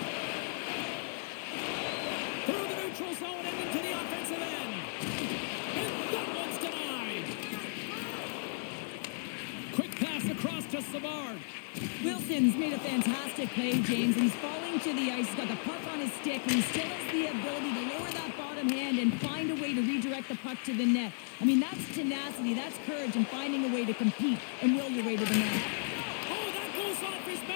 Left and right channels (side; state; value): right; silent; 55 dB below the other